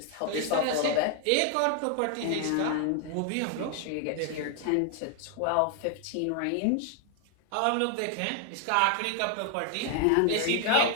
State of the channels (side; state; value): both; different; correlation 0.00